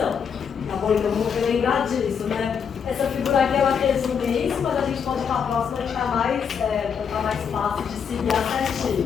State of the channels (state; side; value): quieter; right; 7.0 dB